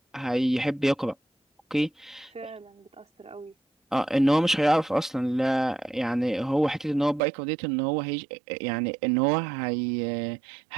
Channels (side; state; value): left; drops out; at 7.2 s